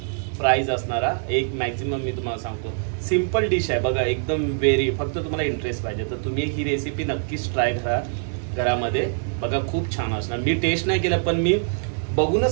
प्राइस असणारा एक मॅक्झिमम मी तुम्हाला सांगतो. सिम्पल डिश आहे बघा, एकदम वेरी. फक्त तुम्हाला इंटरेस्ट पाहिजे तर तुम्ही ही रेसिपी नक्कीच ट्राय करा घरामध्ये. बघा खूप छान असणार. मी टेस्ट नाही केलं पण मी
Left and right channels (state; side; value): silent; left; 63 dB below the other